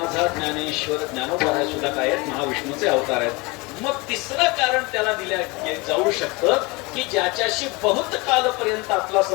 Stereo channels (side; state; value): right; quieter; 25.9 dB